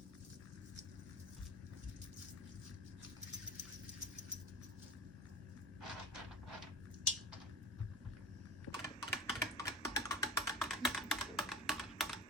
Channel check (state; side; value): normal; both; correlation 0.33